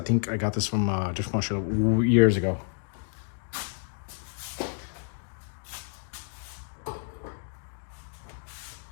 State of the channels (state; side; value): silent; right; digital silence